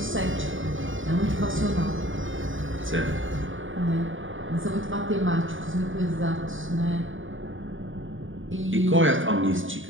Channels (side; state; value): left; late; 0.57 ms